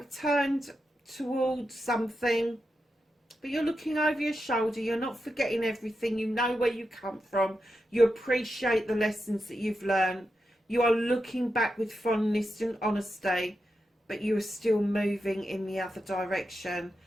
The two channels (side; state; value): both; normal; correlation 0.88